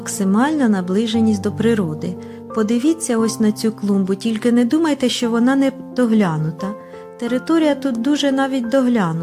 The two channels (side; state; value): both; identical; correlation 1.00